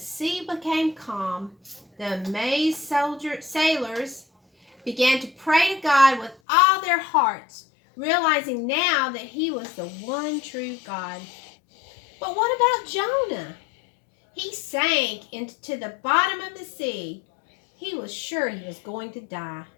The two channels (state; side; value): drops out; right; at 6.4 s